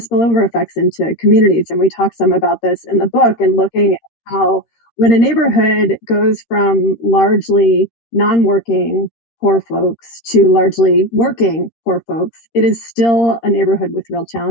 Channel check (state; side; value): late; right; 13 ms